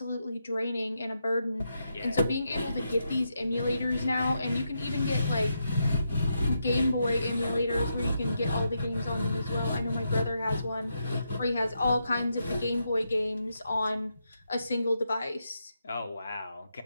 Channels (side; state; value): both; inverted; correlation -0.83